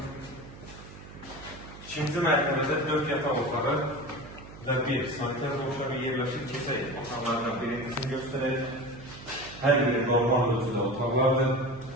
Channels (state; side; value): noise; right; hum, 16 dB below the sound